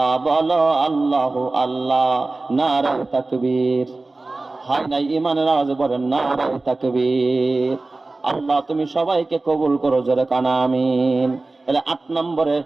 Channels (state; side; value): quieter; left; 3.3 dB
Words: বলো আল্লাহু আল্লাহ। নারায়ে তাকবীর। হয় নাই ইমানের আওয়াজে বলেন নারায়ে তাকবীর। আল্লাহ তুমি সবাইকে কবুল করো, জোরে কানা আমিন। তাহলে 8 নম্বরে